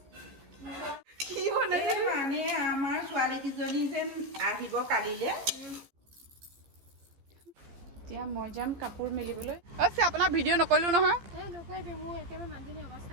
কি বনাইছে মানে আমাৰ ছোৱালী কিজনী যেন আহিব কালিলে। এতিয়া মই যাম কাপোৰ মেলিবলৈ। আছে আপোনাৰ ভিডিঅ' নকৰিলো নহয়।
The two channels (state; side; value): late; left; 15 ms